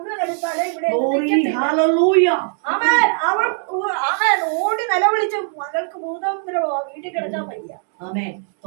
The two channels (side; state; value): left; silent; 55 dB below the other